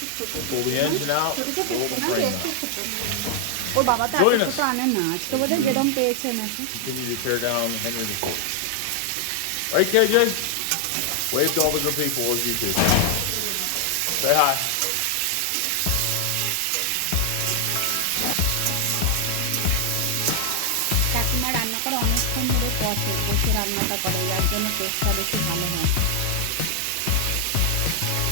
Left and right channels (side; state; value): both; different; correlation 0.00